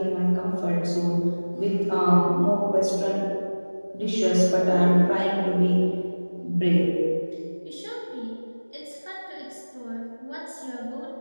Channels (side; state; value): both; inverted; correlation -1.00